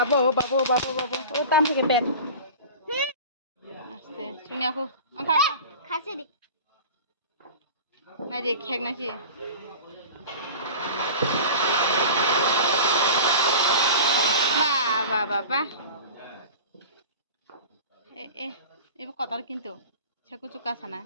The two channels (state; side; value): inverted; both; correlation -0.35